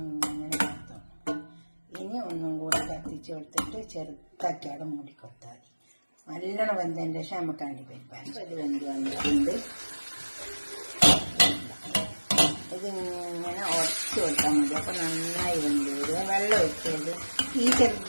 കൊടുത്തോ. ഇനി ഒന്നും കൂടെ കത്തിച്ച് കൊടുത്തിട്ട് ചെറുതാക്കി അവിടെ മൂടി കൊടുത്താൽ മതി. നല്ലോണം വെന്തതിൻ്റെ ശേഷം നമുക്ക് അണ്ടിപ്പരിപ്പാൻ. ഇത് വെന്ത് വന്നിട്ടുണ്ട്. ഇതിങ്ങനെ ഉടച്ചു കൊടുത്താൽ മതി. അപ്പം നന്നായി വെന്ത് വരും. വെള്ളം ഒഴിച്ചത് ഈ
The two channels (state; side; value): inverted; both; correlation -1.00